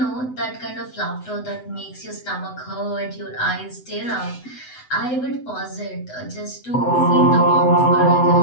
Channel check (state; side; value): late; right; 7.9 ms